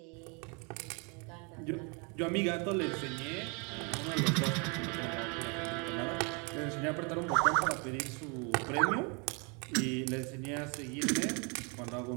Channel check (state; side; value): quieter; left; 33.1 dB